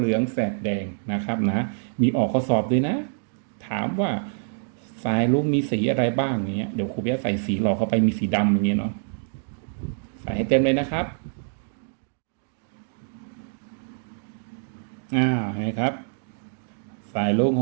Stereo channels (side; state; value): left; silent; digital silence